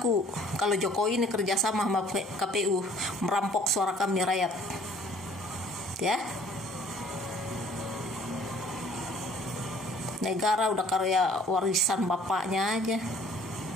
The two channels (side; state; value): both; normal; correlation 0.55